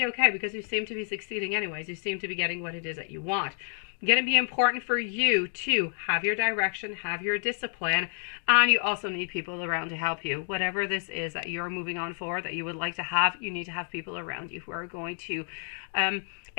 okay because you seem to be succeeding anyways. You seem to be getting what it is that you want. Going to be important for you to have your direction, have your discipline, and you also need people around to help you. Whatever this is that you're moving on for, that you would like to have, you need to have people around you who are going to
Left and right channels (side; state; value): right; silent; 58 dB below the other